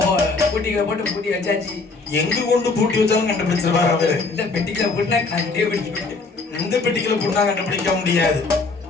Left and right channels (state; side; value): quieter; right; 4.0 dB